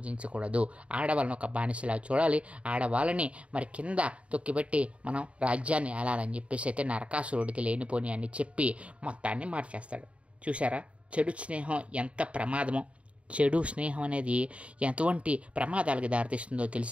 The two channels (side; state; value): left; late; 0.062 ms